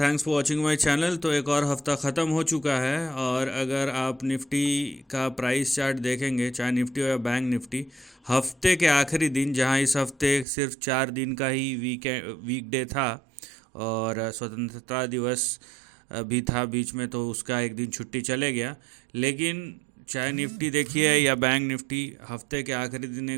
for watching my channel. तो एक और हफ्ता ख़त्म हो चुका है और अगर आप निफ्टी का प्राइस चार्ट देखेंगे, चाहे निफ्टी हो या बैंक निफ्टी, हफ्ते के आखिरी दिन, जहां इस हफ्ते सिर्फ 4 दिन का ही वीकडे था और स्वतंत्रता दिवस भी था बीच में, तो उसका एक दिन छुट्टी चले गया। लेकिन चाहे निफ्टी देखिए या बैंक निफ्टी, हफ्ते के आखिरी दिन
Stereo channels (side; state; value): left; drops out; at 10.5 s